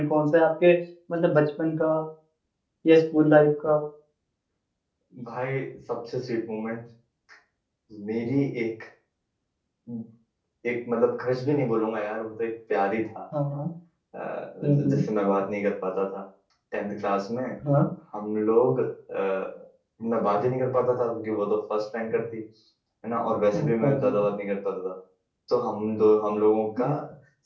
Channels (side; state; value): both; identical; correlation 1.00